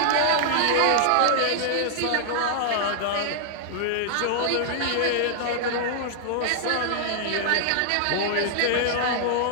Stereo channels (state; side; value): different; both; correlation -0.01